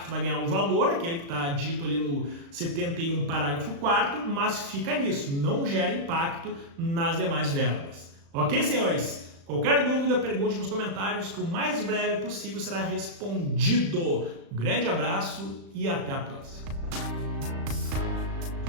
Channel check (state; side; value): late; left; 35 ms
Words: Tu vai ganhar um valor, aquele que está dito ali no 71, parágrafo 4º, mas fica nisso, não gera impacto nas demais verbas. Ok, senhores? Qualquer dúvida, pergunte nos comentários que o mais breve possível será respondido. Um grande abraço e até a próxima.